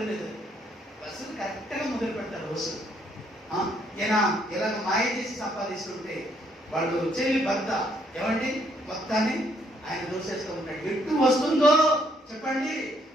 లేదు, వసూలు కరెక్ట్గా మొదలు పెడతారు వసూలు. ఈయన ఇలాగ మాయ చేసి సంపాదిస్తుంటే వాళ్ళు చెల్లి భర్త ఏమండి మొత్తాన్ని ఆయన దోసేస్తూ ఉంటాడు. ఎటు వస్తుందో చెప్పండి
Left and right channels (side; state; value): both; normal; correlation 0.69